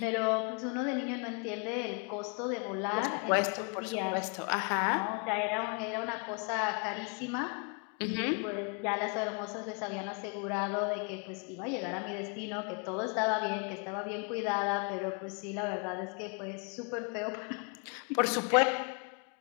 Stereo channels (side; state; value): right; quieter; 37.2 dB